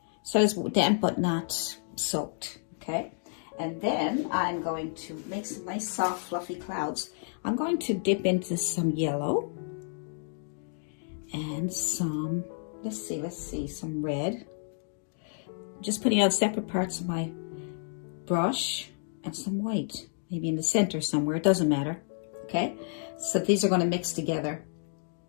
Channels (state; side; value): silent; right; digital silence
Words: So it's damp but not soaked, okay? And then I'm going to make some nice soft fluffy clouds. I'm going to dip into some yellow and some, let's see, some red. Just putting out separate parts of my brush and some white, maybe in the center somewhere, it doesn't matter, okay? So these are going to mix together